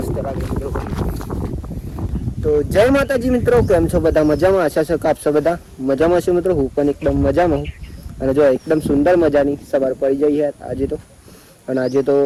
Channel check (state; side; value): identical; both; correlation 1.00